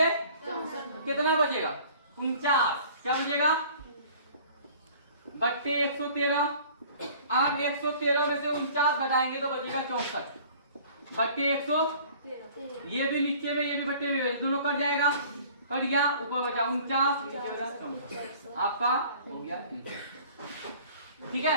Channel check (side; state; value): both; inverted; correlation -0.50